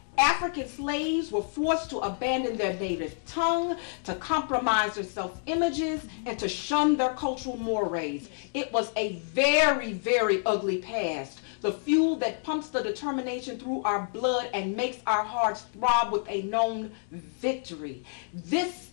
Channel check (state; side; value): silent; right; 59 dB below the other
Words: African slaves were forced to abandon their native tongue, to compromise their self-images, and to shun their cultural mores. It was a very, very ugly past. The fuel that pumps the determination through our blood and makes our hearts throb with a known victory. This